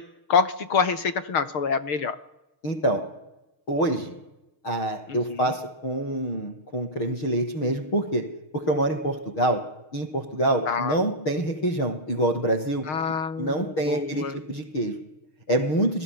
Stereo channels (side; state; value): right; late; 6.5 ms